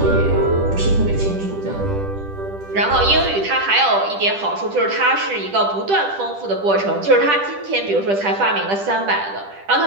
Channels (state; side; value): late; left; 10 ms